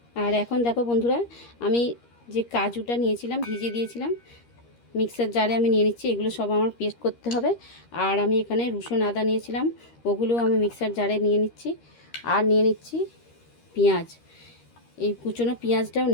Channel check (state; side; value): late; right; 13 ms